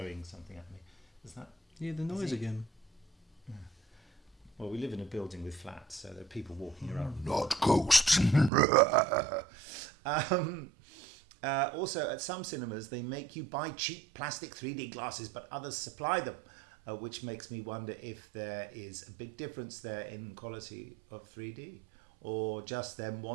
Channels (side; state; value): left; drops out; at 8.5 s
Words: something at me. Is that? Yeah, the noise again. Yeah. Well, we live in a building with flats, so there are people walking around. Not ghosts. Also, at some cinemas, they make you buy cheap plastic 3D glasses, but others supply them, which makes me wonder if there is a big difference there in quality of 3D, or just them